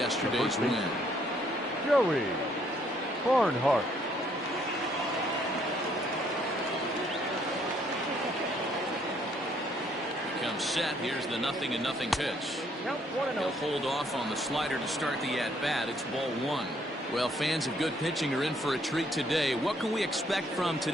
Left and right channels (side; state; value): both; normal; correlation 0.67